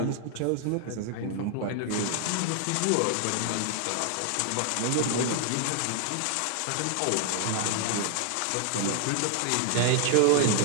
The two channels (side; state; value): both; different; correlation 0.00